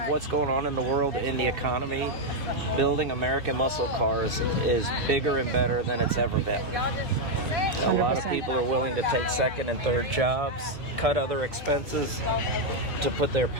what's going on in the world, in the economy, building American muscle cars is bigger and better than it's ever been. A lot of 100%. people are willing to take second and third jobs, cut other expenses to put their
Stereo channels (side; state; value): both; normal; correlation 0.01